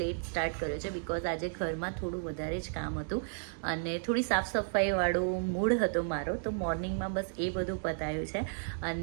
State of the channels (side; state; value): left; silent; digital silence